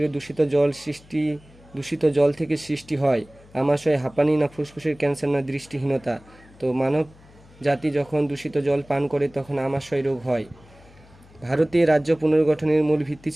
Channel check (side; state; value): left; noise; hum, 25 dB below the sound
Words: দূষিত জল থেকে সৃষ্টি হয় আমাশয়, হাঁপানি, না ফুসফুসের ক্যান্সার, না দৃষ্টিহীনতা? তো মানব জাতি যখন দূষিত জল পান করে তখন আমাশয় রোগ হয়। ভারতে রাজ্য পুনর্গঠনের মূল ভিত্তি